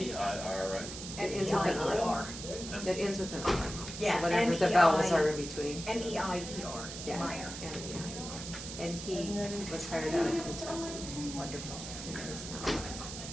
right? It ends with an R. M-E-I-E-R. It ends with an R. Yeah, So whatever the M-E-I vowels are in between. M-E-I-E-R. Yeah. Meyer. M-E-I-R. And he was hired out of Kentucky. Wonderful. And is now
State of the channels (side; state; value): right; noise; hiss, 9 dB below the sound